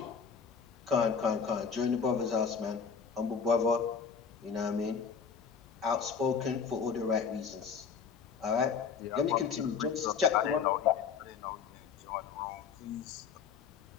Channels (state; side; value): quieter; right; 6.3 dB